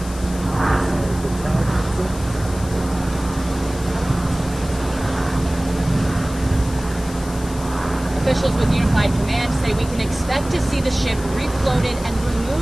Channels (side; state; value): left; noise; hiss, 16 dB below the sound